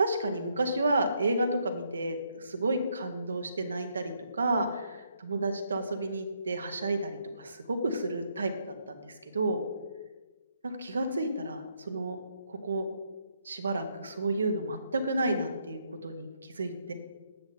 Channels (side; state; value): both; inverted; correlation -0.74